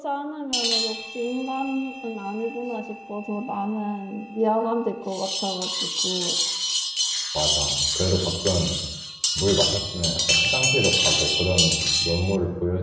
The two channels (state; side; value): identical; both; correlation 1.00